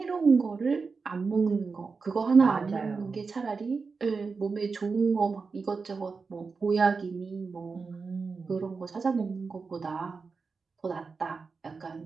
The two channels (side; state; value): left; quieter; 4.7 dB